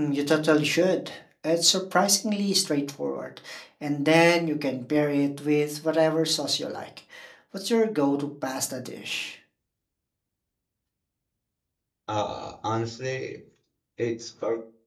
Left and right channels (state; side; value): identical; both; correlation 1.00